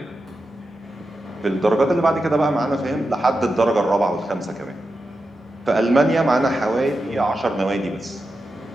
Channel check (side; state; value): both; normal; correlation 0.90